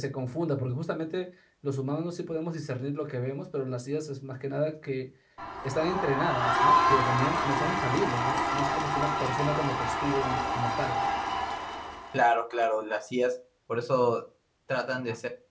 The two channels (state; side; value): identical; both; correlation 1.00